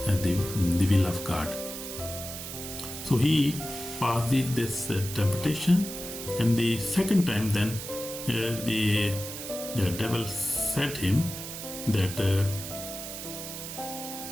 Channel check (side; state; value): right; noise; hiss, 8 dB below the sound